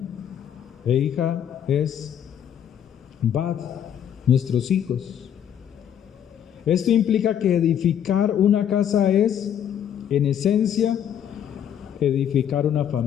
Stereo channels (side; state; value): right; quieter; 9.4 dB